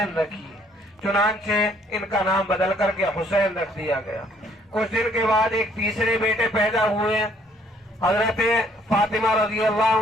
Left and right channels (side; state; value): both; normal; correlation 0.64